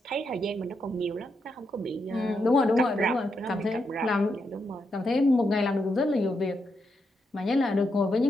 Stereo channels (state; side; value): normal; both; correlation 0.82